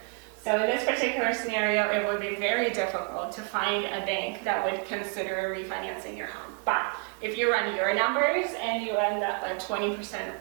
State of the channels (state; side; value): quieter; left; 39.6 dB